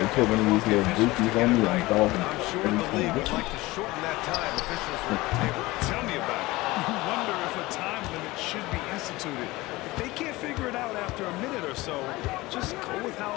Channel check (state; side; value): quieter; right; 20.2 dB